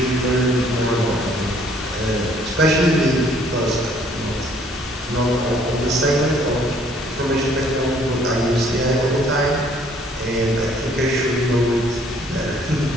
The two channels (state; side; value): normal; both; correlation 0.61